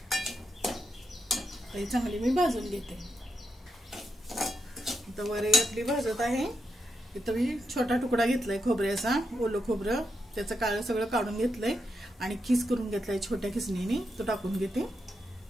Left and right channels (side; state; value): both; normal; correlation 0.83